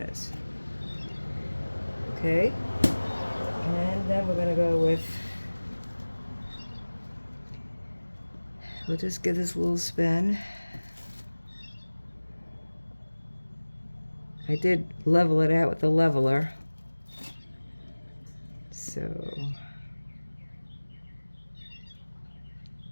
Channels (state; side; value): inverted; both; correlation -1.00